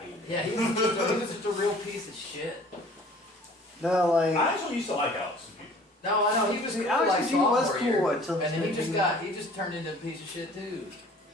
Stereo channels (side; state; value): both; normal; correlation 0.50